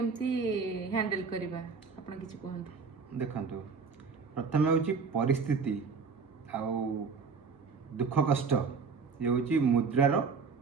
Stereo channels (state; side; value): quieter; left; 5.1 dB